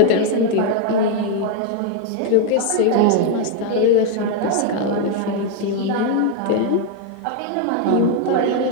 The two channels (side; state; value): both; different; correlation 0.01